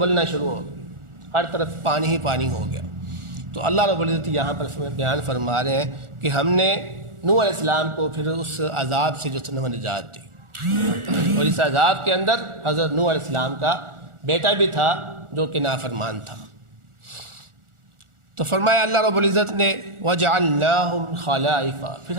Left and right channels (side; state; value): left; late; 1.4 ms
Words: شروع ہو گئی، ہر طرف پانی ہی پانی ہو گیا. تو اللہ رب العزت یہاں پر بیان فرما رہے ہیں کہ ہم نے نوح علیہ السلام کو پھر اس عذاب سے جو ہے نجات دی، اور اس عذاب کے اندر حضرت نوح علیہ السلام کا بیٹا بھی تھا جو کہ نافرمان تھا. تو فرمایا اللہ رب العزت نے وَجَعَلْنَاهُمْ خَلَائِفَ، پھر